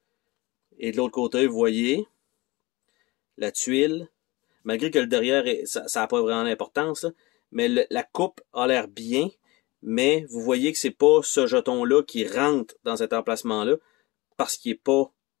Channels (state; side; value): quieter; right; 22.1 dB